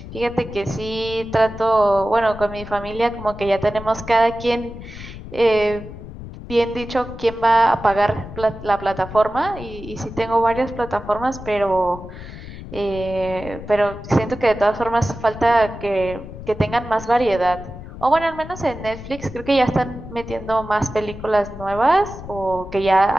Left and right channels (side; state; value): left; noise; rumble, 13 dB below the sound